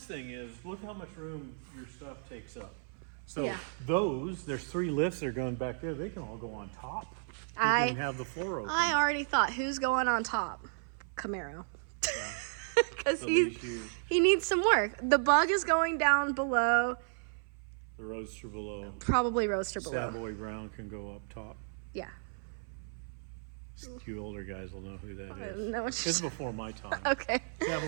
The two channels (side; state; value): left; silent; 55 dB below the other